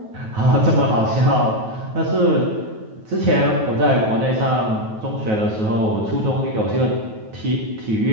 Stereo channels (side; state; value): left; late; 9.3 ms